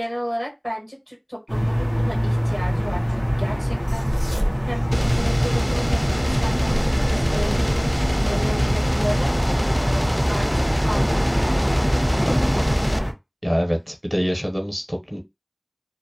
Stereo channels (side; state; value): both; identical; correlation 1.00